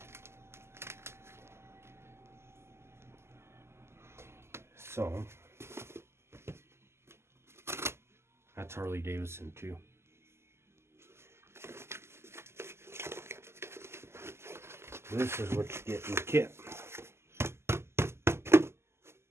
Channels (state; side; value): late; left; 0.12 ms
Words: So that's Harley Davidson too. This is what you get in the kit.